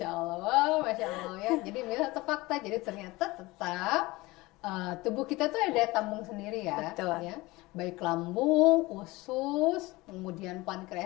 Masya Allah, Masya Allah ya. Jadi mitos atau fakta. Jadi ternyata tetap tubuh kita tuh ada tambung sendiri ya. Betul. Ya. Baik lambung, usus, kemudian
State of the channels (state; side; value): quieter; right; 21.2 dB